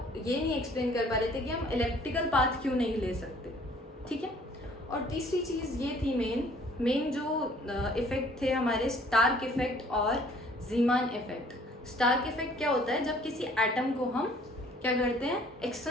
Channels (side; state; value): both; normal; correlation 0.56